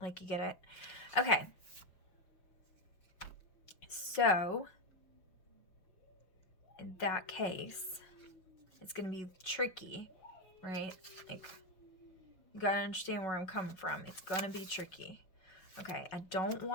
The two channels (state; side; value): late; right; 5.4 ms